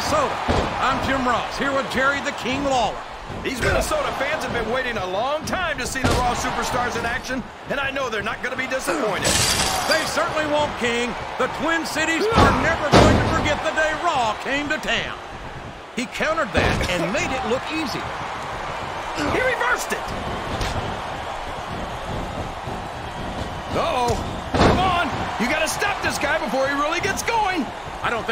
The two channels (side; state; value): both; identical; correlation 1.00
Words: I'm Jim Ross, here with Jerry the King Lawler. These Minnesota fans have been waiting a long time to see the Raw Superstars in action, and I know they're not going to be disappointed. They certainly won't, King. The Twin Cities are never going to forget the day Raw came to town. He countered that and made it look easy. He reversed it. Uh-oh. Come on. You got to stop this guy before he really gets going. I don't